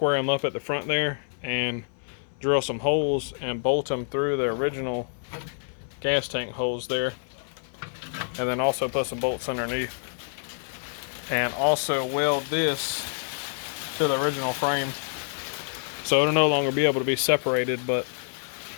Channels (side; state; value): right; silent; 60 dB below the other